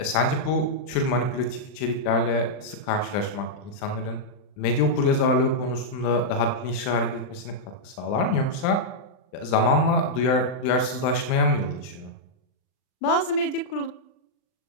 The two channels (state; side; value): late; right; 39 ms